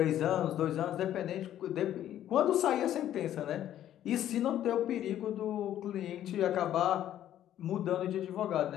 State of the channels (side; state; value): right; quieter; 11.7 dB